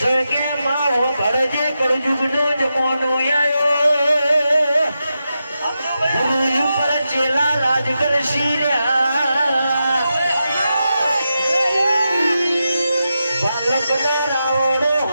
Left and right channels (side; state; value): both; inverted; correlation -0.88